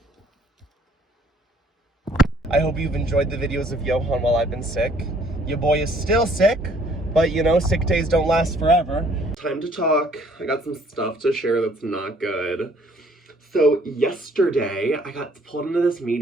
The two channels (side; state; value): both; normal; correlation 0.61